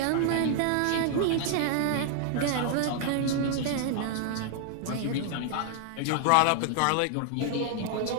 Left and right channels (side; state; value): both; different; correlation 0.00